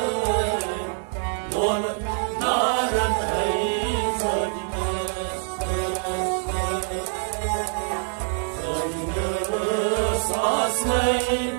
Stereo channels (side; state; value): left; silent; 62 dB below the other